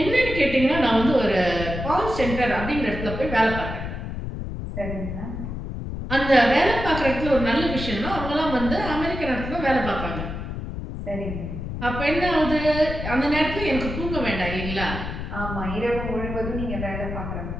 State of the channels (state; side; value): noise; left; rumble, 6 dB below the sound